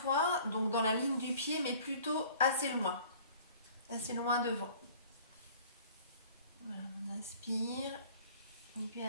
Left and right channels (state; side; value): inverted; both; correlation -0.49